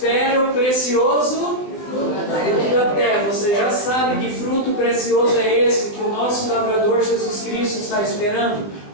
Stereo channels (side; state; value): right; late; 19 ms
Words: o precioso fruto da terra. Você já sabe que fruto precioso é esse que o nosso lavrador Jesus Cristo está esperando.